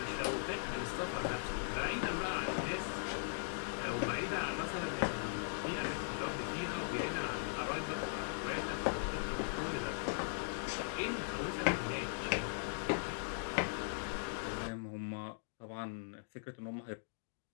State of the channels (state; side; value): silent; right; digital silence